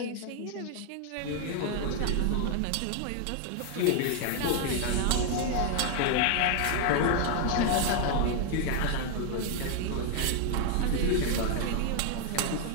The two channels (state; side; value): different; both; correlation 0.00